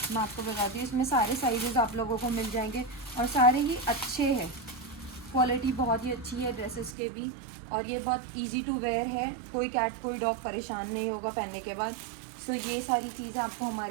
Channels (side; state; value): left; drops out; at 7.0 s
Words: मैं आपको बताती हूँ, इसमें सारे साइजेस आप लोगों को मिल जाएंगे और सारे ही अच्छे हैं, क्वालिटी बहुत ही अच्छी है ड्रेसेस के भी। और ये बहुत इजी टू वेयर है, कोई कैट कोई डॉग परेशान नहीं होगा पहनने के बाद। ये सारी चीज़ें आपको